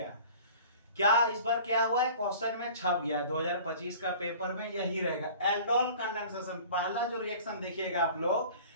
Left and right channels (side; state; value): both; inverted; correlation -0.44